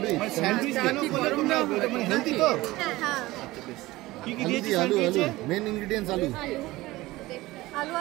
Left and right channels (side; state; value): left; quieter; 18.8 dB